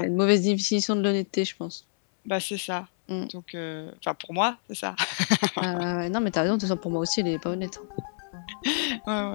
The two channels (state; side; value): silent; right; 60 dB below the other